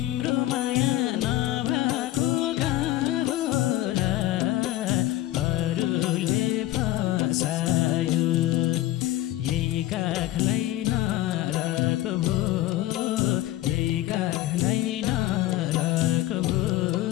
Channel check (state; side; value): quieter; right; 15.2 dB